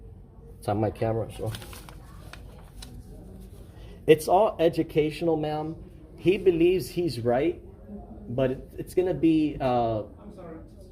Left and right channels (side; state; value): both; identical; correlation 1.00